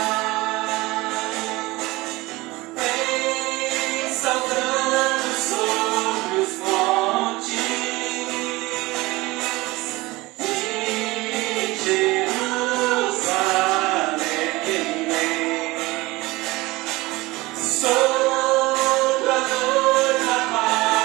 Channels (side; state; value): left; quieter; 21.0 dB